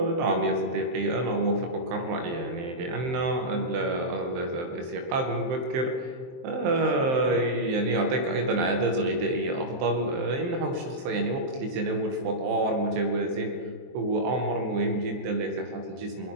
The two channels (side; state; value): left; late; 23 ms